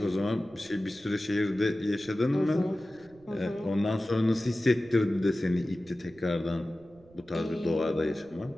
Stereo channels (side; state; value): right; noise; rumble, 27 dB below the sound